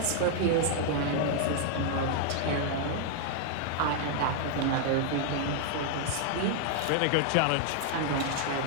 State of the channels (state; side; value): different; both; correlation 0.00